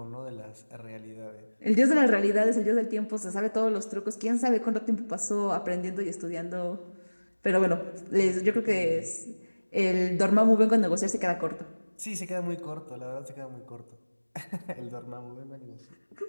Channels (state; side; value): inverted; both; correlation -1.00